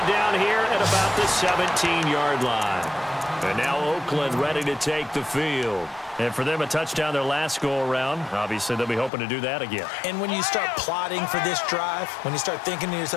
down here at about the 17-yard line. And now Oakland ready to take the field. And for them, a touchdown their last go-around. Obviously, they'll be hoping to do that again. And when you start plotting for this drive, when you start thinking to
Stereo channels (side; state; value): right; drops out; at 9.1 s